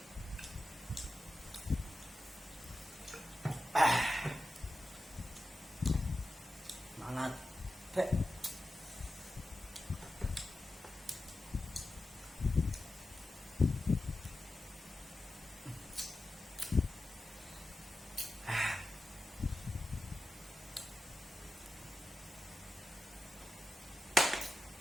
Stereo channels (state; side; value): normal; both; correlation 0.92